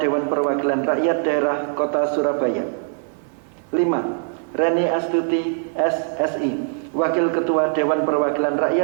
Dewan Perwakilan Rakyat Daerah Kota Surabaya. 5. Reni Astuti SSI, Wakil Ketua Dewan Perwakilan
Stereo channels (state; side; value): silent; left; digital silence